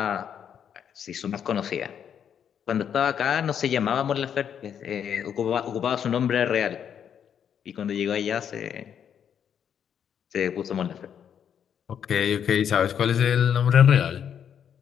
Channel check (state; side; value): quieter; right; 8.5 dB